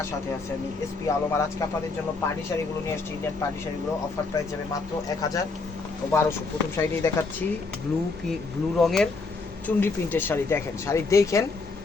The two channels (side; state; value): right; quieter; 3.9 dB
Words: সাথে আছে আমি এসপি আলম। আর আজকে আপনাদের জন্য পার্টি শাড়িগুলো নিয়ে আসছি। ইন্ডিয়ান পার্টি শাড়িগুলো অফার প্রাইস যাবে মাত্র 1000 ও 1200। প্রথম শাড়িটাই দেখাচ্ছি, ব্লু রঙের চুনরি প্রিন্টের শাড়ি। দেখেন, শাড়ি দেখেন